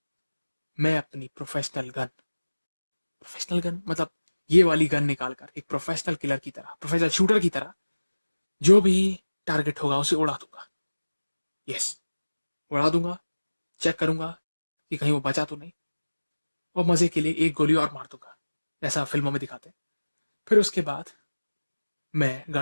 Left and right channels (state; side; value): inverted; both; correlation -1.00